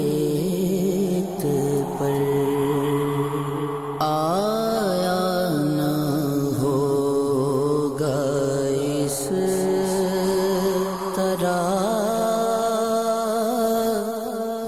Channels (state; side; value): identical; both; correlation 1.00